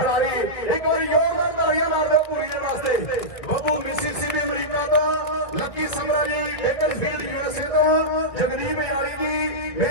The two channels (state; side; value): late; right; 1.9 ms